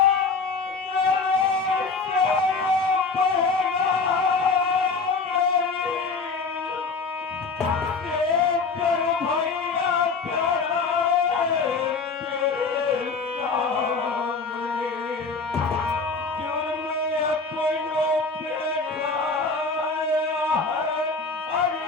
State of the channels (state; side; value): quieter; right; 4.4 dB